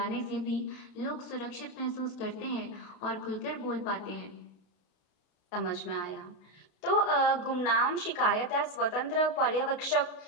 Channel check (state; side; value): late; right; 32 ms